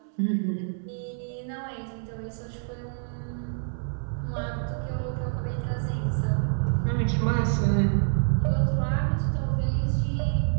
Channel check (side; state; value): left; silent; 60 dB below the other